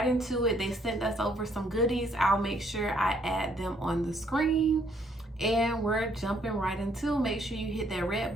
into it. They sent us over some goodies. I'll make sure I add them on the screen. And we're jumping right into. Make sure you hit that red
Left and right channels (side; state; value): both; normal; correlation 0.68